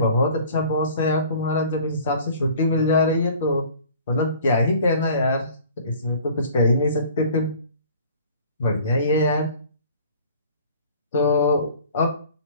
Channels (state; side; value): inverted; both; correlation -0.48